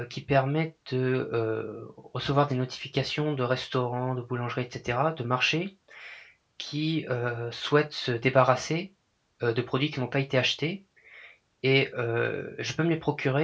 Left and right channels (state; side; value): identical; both; correlation 1.00